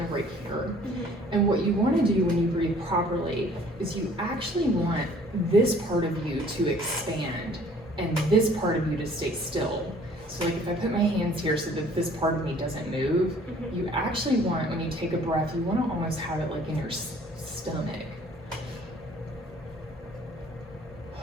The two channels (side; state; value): both; normal; correlation 0.55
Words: of right here. And what you want to do when you breathe properly is you actually want this part of you to expand and this part of you to stay still. So like if I put my hands here so that this part of me doesn't move, you actually want, when you take a breath, you want to almost have it like in your stomach.